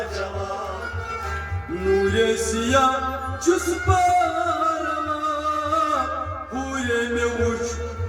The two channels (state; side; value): identical; both; correlation 1.00